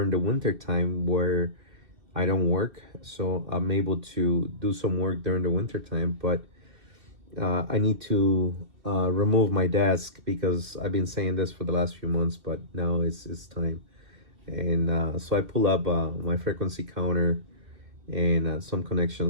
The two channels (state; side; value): late; left; 2.7 ms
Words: the winter time where I don't work, so I'm able to do some work during the winter time. But I need to remove my desk because I've been saying this for the last few months, but now it's time. And so I pull up my frequency counter and some